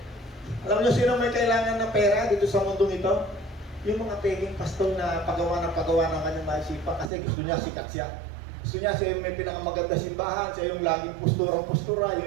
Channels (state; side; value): drops out; left; at 7.1 s